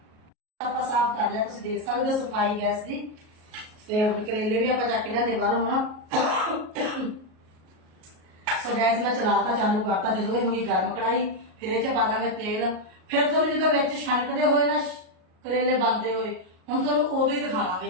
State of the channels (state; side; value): late; left; 38 ms